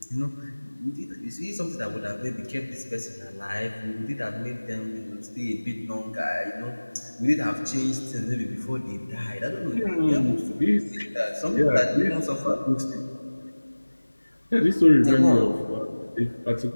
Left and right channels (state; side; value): inverted; both; correlation -1.00